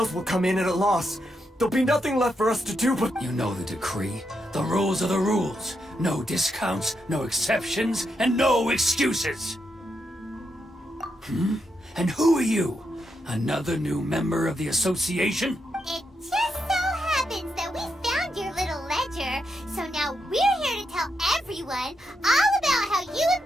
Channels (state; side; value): normal; both; correlation 0.82